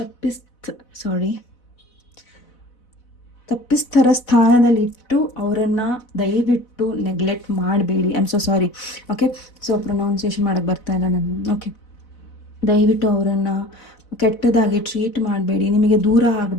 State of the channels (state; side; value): late; right; 4.0 ms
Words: ತಪ್ಪಿಸ್ತರ ಸ್ಥಾನದಲ್ಲಿಟ್ಟು ಅವರನ್ನು ದಯವಿಟ್ಟು ನೆಗ್ಲೆಕ್ಟ್ ಮಾಡಬೇಡಿ. I am so sorry. Okay, so pronunciation ಮಾಡೋಕ್ಕೆ ಬರ್ತಾ ಇಲ್ಲ ನಾನು. ಓಕೆ, ದಯವಿಟ್ಟು ಅವರನ್ನು ಕೆಟ್ಟದಾಗಿ ಟ್ರೀಟ್ ಮಾಡಬೇಡಿ. ನಿಮಗೆ ದೂರ